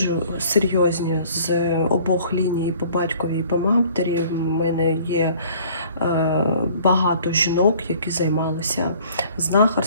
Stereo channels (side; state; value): both; inverted; correlation -0.53